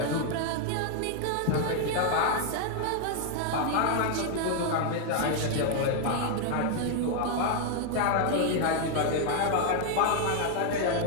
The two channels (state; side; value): different; both; correlation 0.00